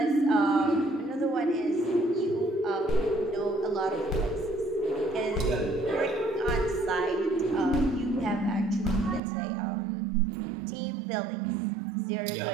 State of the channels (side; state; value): left; drops out; at 9.2 s